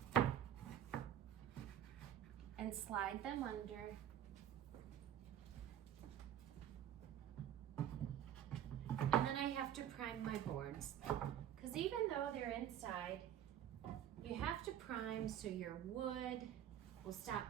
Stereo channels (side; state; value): left; quieter; 10.5 dB